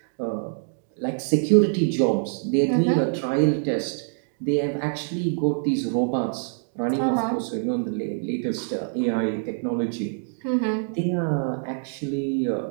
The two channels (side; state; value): left; silent; digital silence